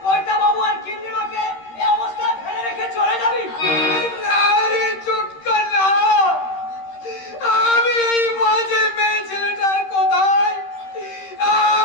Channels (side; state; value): right; late; 13 ms